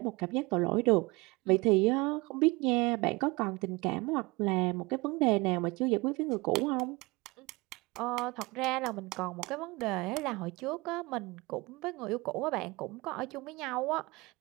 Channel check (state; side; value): quieter; left; 24.4 dB